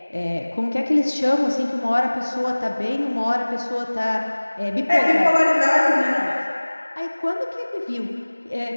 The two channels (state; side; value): inverted; both; correlation -1.00